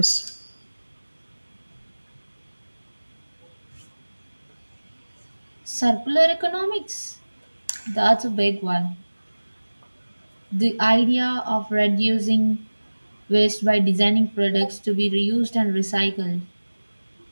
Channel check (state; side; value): inverted; both; correlation -1.00